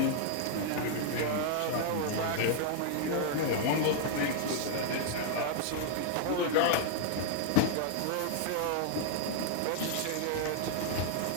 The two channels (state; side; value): different; both; correlation 0.00